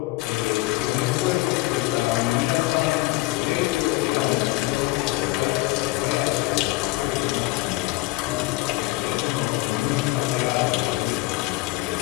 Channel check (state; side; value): quieter; right; 20.6 dB